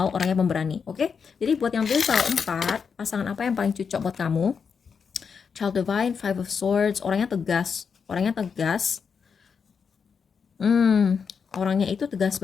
orangnya pemberani. Oke? Jadi buat yang pilih soal 4, pasangan apa yang paling cocok buat kamu? Child Divine, Five of Swords, orangnya tegas. Orangnya itu tegas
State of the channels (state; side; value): quieter; right; 6.1 dB